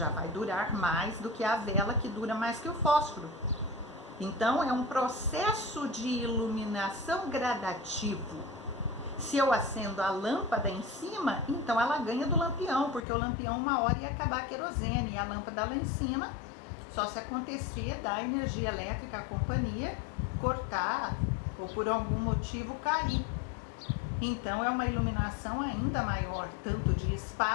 vai durar mais do que a vela, que dura mais que o fósforo. Então, é um processo de iluminação gradativo. Se eu acendo a lâmpada em cima, então ela ganha do lampião, porque o lampião uma hora ia acabar a querosene, e a lâmpada lá em cima, só se acontecia da energia elétrica, a companhia, cortar ou por algum motivo cair. Então, é uma iluminação ainda maior, tanto de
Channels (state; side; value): drops out; right; at 13.1 s